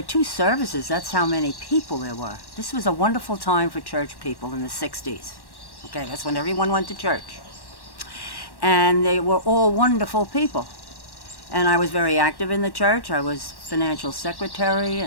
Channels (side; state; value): right; late; 1.1 ms